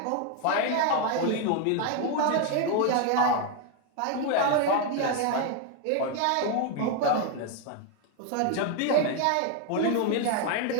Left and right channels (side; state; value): both; different; correlation 0.01